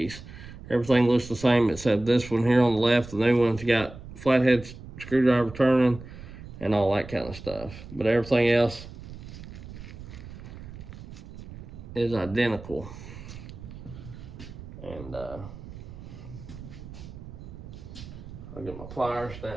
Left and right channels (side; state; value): right; noise; rumble, 14 dB below the sound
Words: Everything looks the same except this one here on the left. The new one's got flathead screwdriver turning and all that kind of stuff. But everything else is identical. And I'll get my pliers,